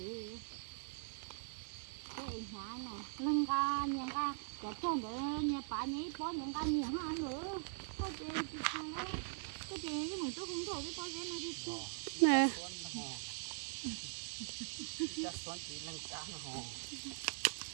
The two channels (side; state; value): left; silent; 50 dB below the other